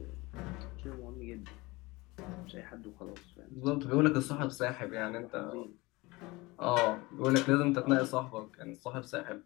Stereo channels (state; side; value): quieter; right; 22.6 dB